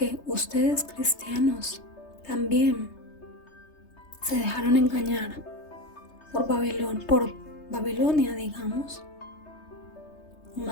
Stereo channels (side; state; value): right; late; 3.3 ms